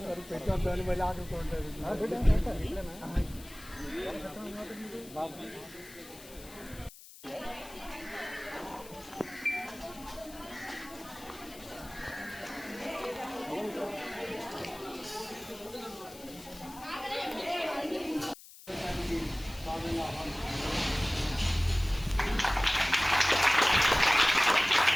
పెట్టొద్దని మళ్ళీ ఆడుకుంటారు.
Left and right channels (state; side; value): noise; left; hiss, 18 dB below the sound